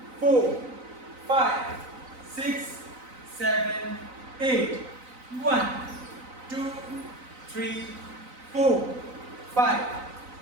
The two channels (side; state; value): left; late; 4.0 ms